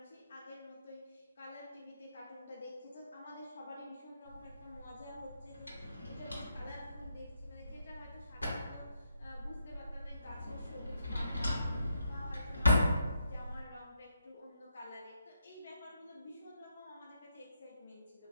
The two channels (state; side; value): inverted; both; correlation -0.79